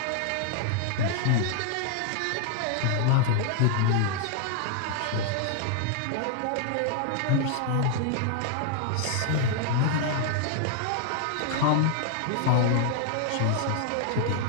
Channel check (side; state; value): both; different; correlation 0.00